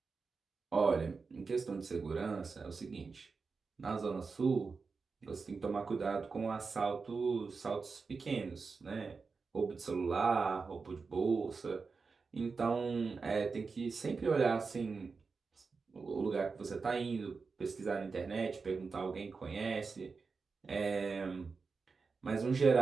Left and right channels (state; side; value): quieter; left; 4.7 dB